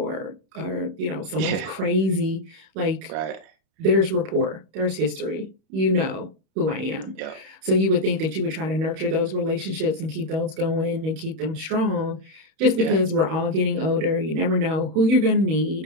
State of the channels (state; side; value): late; left; 31 ms